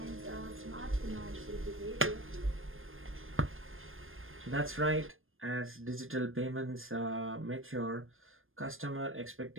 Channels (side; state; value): left; late; 0.59 ms